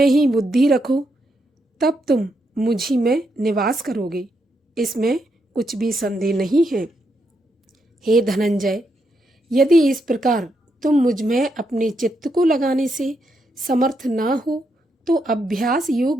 ही बुद्धि रखो, तब तुम मुझ ही में निवास करोगे, इसमें कुछ भी संदेह नहीं है। हे धनंजय, यदि इस प्रकार तुम मुझ में अपने चित्त को लगाने से समर्थ ना हो तो अभ्यास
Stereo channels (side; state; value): both; normal; correlation 0.80